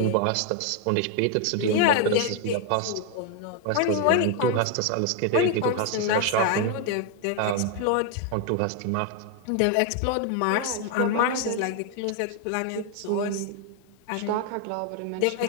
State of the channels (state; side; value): different; both; correlation 0.01